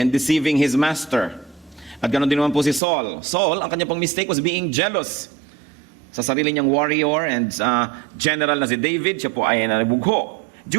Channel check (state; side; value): drops out; left; at 2.8 s